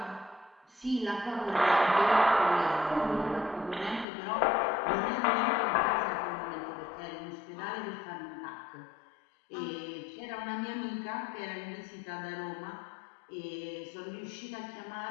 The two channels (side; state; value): right; drops out; at 4.0 s